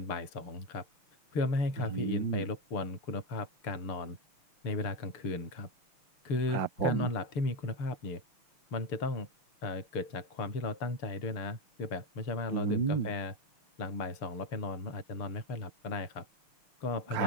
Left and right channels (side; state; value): right; late; 6.7 ms